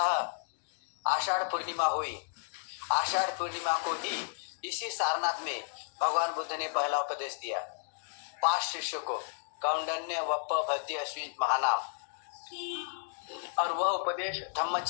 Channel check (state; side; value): silent; right; digital silence